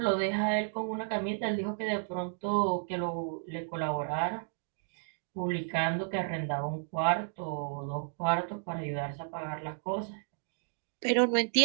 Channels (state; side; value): silent; left; digital silence